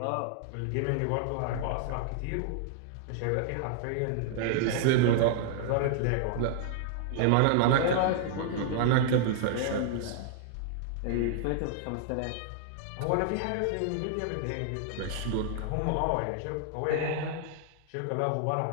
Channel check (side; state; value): both; different; correlation -0.01